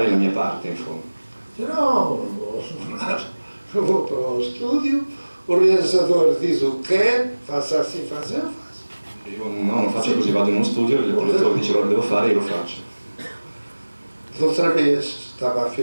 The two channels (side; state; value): both; inverted; correlation -1.00